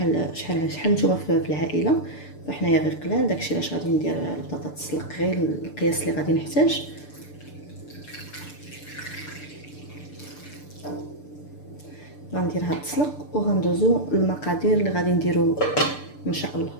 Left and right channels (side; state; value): right; late; 6.8 ms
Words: شحال نتوما في العائله، فحنايا غير قلال. داكشي علاش غادي ندير البطاطا تسلق غير القياس اللي غادي نحتاج. غنديرها تسلق وغندوزو المقادير اللي غادي نديرو ان شاء الله.